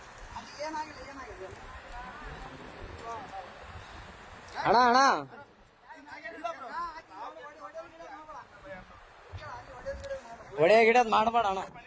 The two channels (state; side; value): identical; both; correlation 1.00